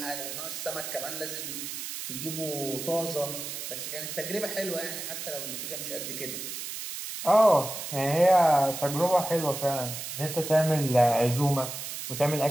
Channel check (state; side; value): noise; right; hiss, 7 dB below the sound